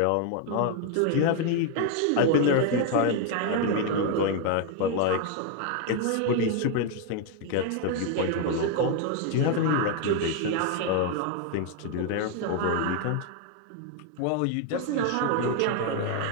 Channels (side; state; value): both; different; correlation 0.01